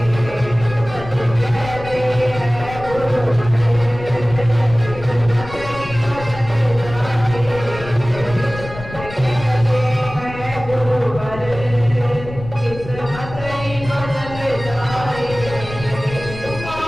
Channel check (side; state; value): left; noise; rumble, 13 dB below the sound